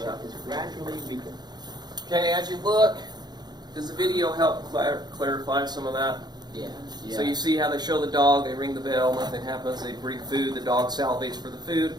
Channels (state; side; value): late; left; 0.20 ms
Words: is gradually weakened. Okay, as you look, does the video help clarify some of that? Yeah. So you see how they show the dog, they ring the bell, nothing happens, they bring food, the dog salivates for the food,